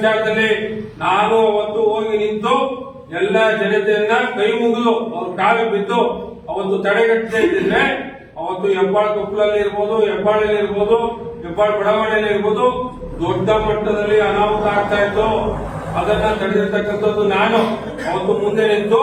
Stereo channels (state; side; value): identical; both; correlation 1.00